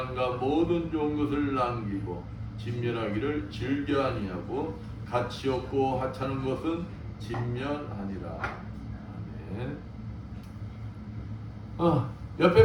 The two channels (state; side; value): identical; both; correlation 1.00